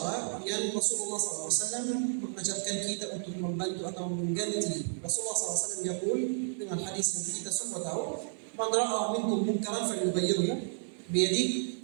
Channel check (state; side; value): silent; left; digital silence